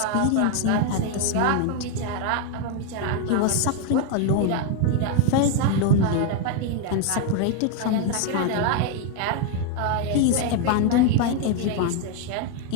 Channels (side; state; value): both; different; correlation 0.01